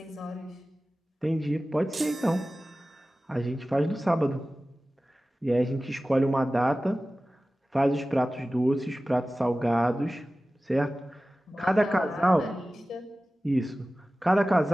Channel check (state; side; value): normal; both; correlation 0.96